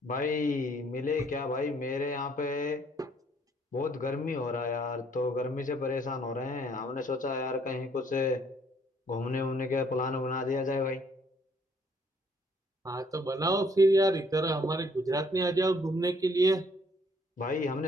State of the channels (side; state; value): both; normal; correlation 0.64